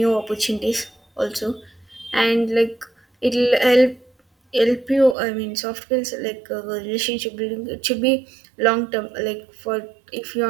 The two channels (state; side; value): drops out; left; at 5.2 s